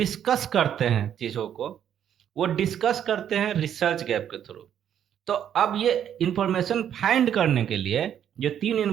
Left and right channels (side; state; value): left; quieter; 9.6 dB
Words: करते हैं, चीजों को वो डिस्कस करते हैं रिसर्च गैप के थ्रू। तो अब ये इंफॉर्मेशन फाइंड करने के लिए जो 3